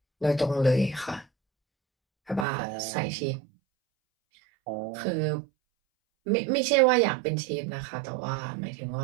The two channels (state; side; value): drops out; left; at 2.5 s